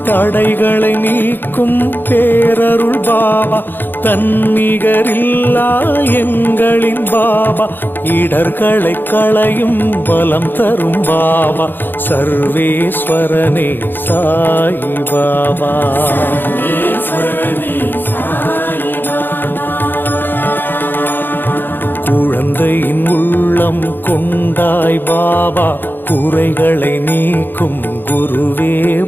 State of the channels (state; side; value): late; right; 0.095 ms